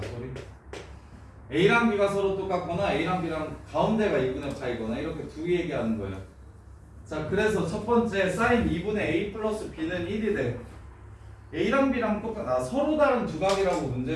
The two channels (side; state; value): both; identical; correlation 1.00